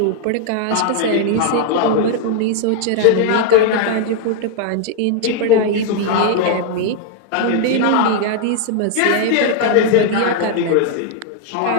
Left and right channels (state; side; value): different; both; correlation 0.00